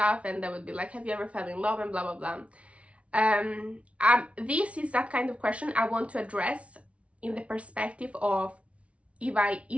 and they would be like, have you ever fell in love, and blah blah blah. This is that kind of question I want to address in the perspective of if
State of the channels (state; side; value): late; left; 0.063 ms